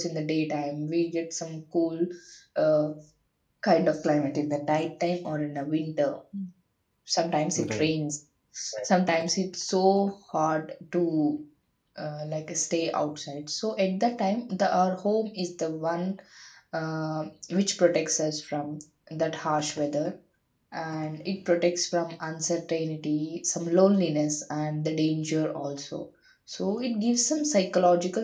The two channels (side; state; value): both; identical; correlation 1.00